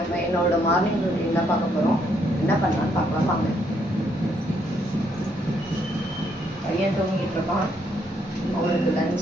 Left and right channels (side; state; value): both; normal; correlation 0.72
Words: என்னோட மார்னிங் ரூட்டீன் தான் பார்க்க போகிறோம். என்ன பண்ணலான்னு பார்க்கலாம் வாங்க. பையன் தூங்கிட்டு இருக்கான். அவனுக்கு